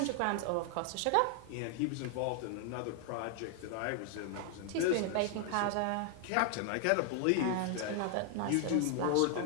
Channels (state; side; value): different; both; correlation 0.00